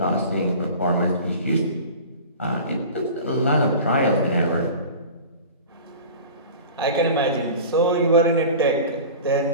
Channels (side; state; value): both; inverted; correlation -0.37